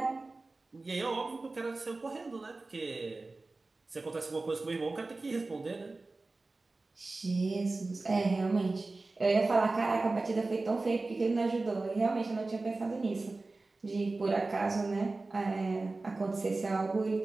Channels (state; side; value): quieter; left; 3.4 dB